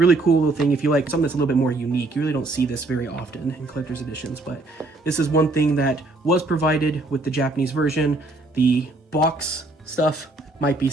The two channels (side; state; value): left; quieter; 3.1 dB